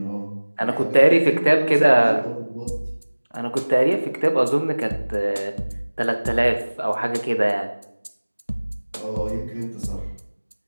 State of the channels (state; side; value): inverted; both; correlation -1.00